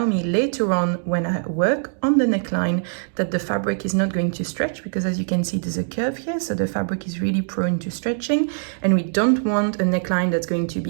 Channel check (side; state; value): left; silent; digital silence